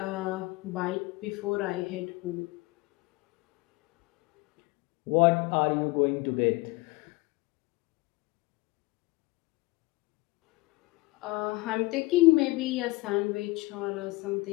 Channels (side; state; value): right; quieter; 22.7 dB